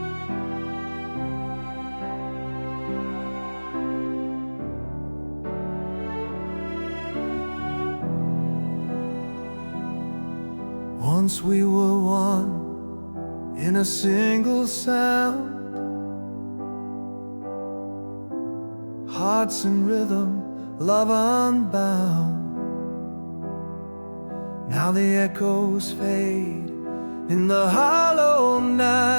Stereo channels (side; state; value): both; inverted; correlation -1.00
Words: Once we were one in a single sound, hearts in rhythm, love unbound. Now the echoes fade in the hollow